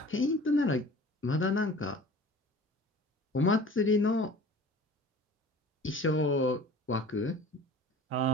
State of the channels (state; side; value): normal; both; correlation 0.44